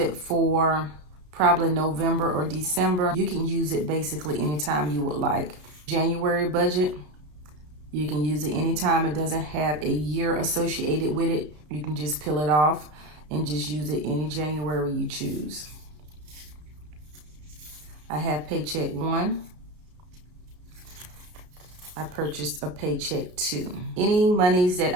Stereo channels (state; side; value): late; left; 33 ms